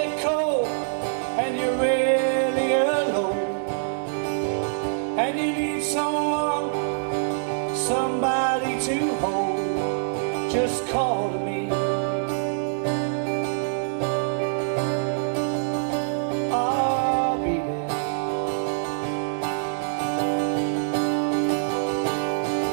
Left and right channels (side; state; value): left; silent; 62 dB below the other